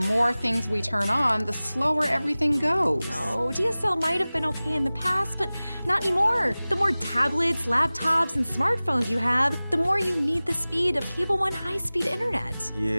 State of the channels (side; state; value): both; inverted; correlation -0.98